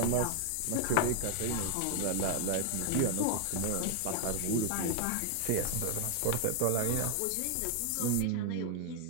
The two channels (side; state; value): both; different; correlation 0.00